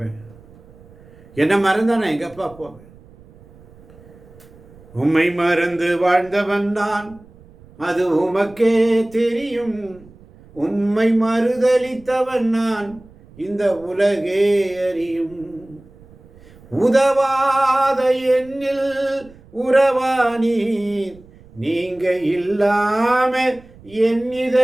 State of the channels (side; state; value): right; noise; rumble, 24 dB below the sound